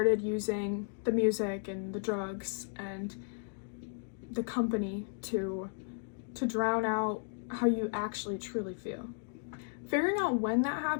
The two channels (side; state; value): right; silent; 55 dB below the other